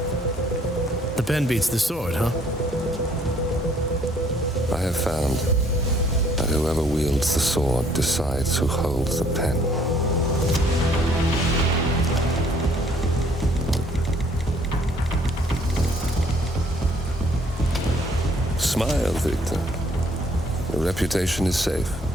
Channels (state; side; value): normal; both; correlation 0.62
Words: The pen beats the sword, huh? I have found that whoever wields the sword decides who holds the pen. Smile, Victor. Your reputation is safe.